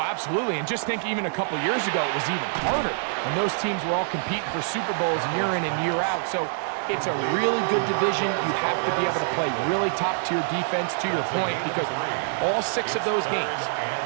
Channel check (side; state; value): left; silent; digital silence